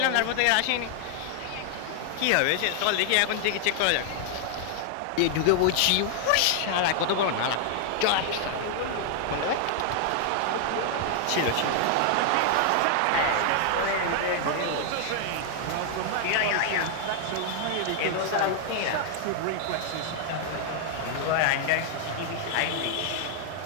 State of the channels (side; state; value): both; different; correlation 0.00